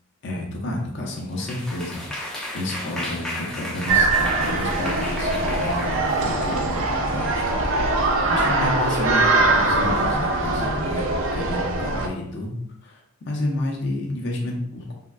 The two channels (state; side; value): normal; both; correlation 0.21